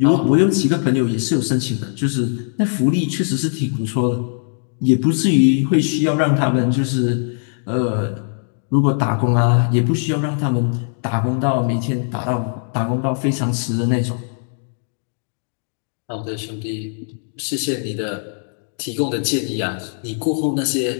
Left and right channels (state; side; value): silent; right; digital silence